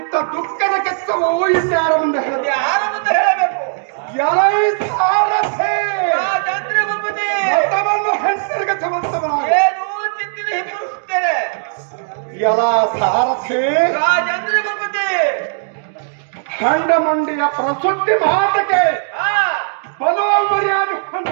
ದುಃಖದ ಕೆತ್ತವು ಇನ್ಯಾರ ಮುಂದೆ ಹೇಳಬೇಕು. ಎಲೈ ಸಾರಥೆ ರಾಜೇಂದ್ರ ಭೂಪತಿ ಮತವನ್ನು ಹೆಸರಿಗೆ ಸಮರ್ಥವನಾಗ ಏನು ಚಿತ್ತಿನ ಹಿಂಬರಿಸುತ್ತೇನೆ. ಎಲ ಸಾರಥೆ ರಾಜೇಂದ್ರ ಭೂಪತಿ ಖಂಡ ಮಂಡಿಯ ಪ್ರಸುದ್ಧಿ ಮಾತಕ್ಕೆ ಬಲುವ ಮರ್ಯಾದೆ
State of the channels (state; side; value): silent; left; digital silence